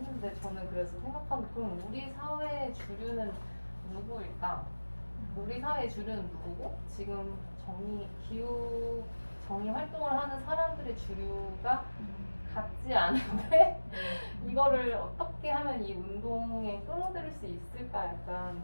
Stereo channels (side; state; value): both; inverted; correlation -1.00